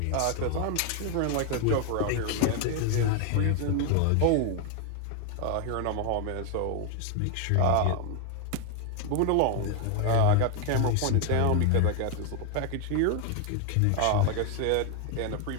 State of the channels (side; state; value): both; different; correlation 0.01